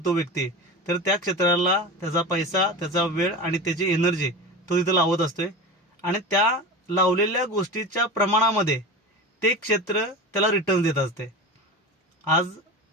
तो व्यक्ती तर त्या क्षेत्राला त्याचा पैसा, त्याचा वेळ आणि त्याची एनर्जी तो तिथं लावत असतोय. आणि त्या लावलेल्या गोष्टीच्या प्रमाणामध्ये ते क्षेत्र त्याला रिटर्न देत असते. आज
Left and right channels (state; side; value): normal; both; correlation 0.28